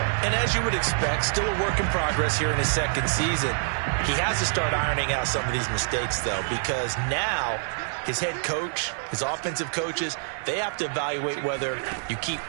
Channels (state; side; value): silent; left; 57 dB below the other